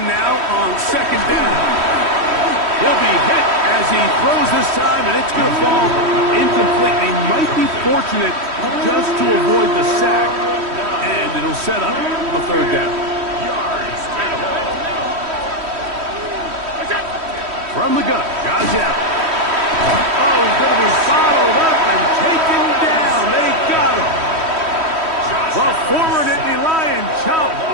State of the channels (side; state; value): left; late; 3.1 ms